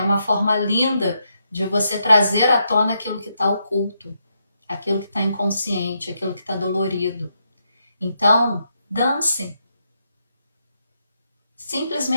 forma linda de você trazer à tona aquilo que está oculto, aquilo que está inconsciente, aquilo que está dolorido. Então, dance.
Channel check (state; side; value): inverted; both; correlation -0.81